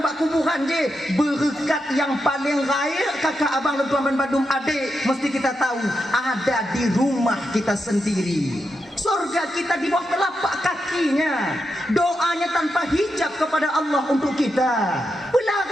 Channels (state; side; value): normal; both; correlation 0.86